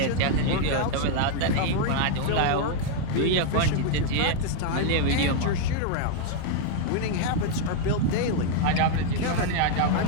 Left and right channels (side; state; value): both; different; correlation 0.00